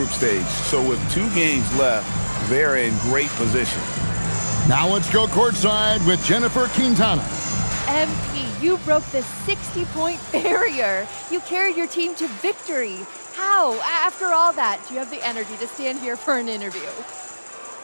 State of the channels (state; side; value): inverted; both; correlation -1.00